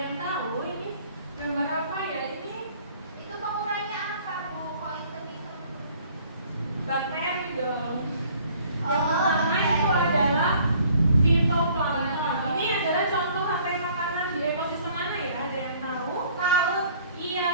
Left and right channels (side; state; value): both; inverted; correlation -0.57